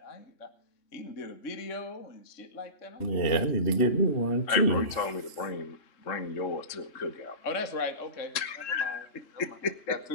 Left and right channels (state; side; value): late; right; 3.7 ms